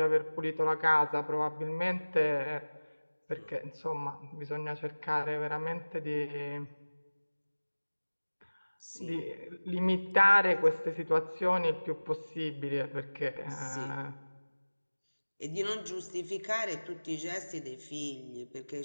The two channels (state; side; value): inverted; both; correlation -1.00